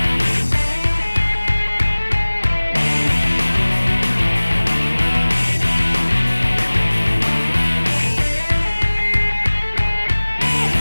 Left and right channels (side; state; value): both; inverted; correlation -1.00